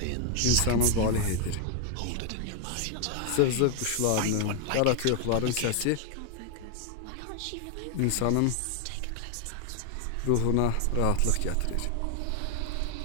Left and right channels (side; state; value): both; different; correlation 0.00